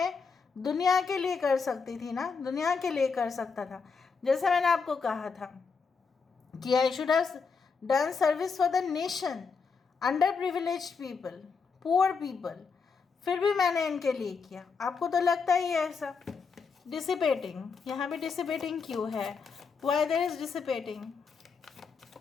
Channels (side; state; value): right; quieter; 5.3 dB